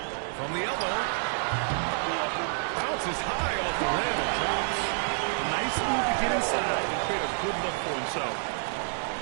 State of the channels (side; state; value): left; silent; digital silence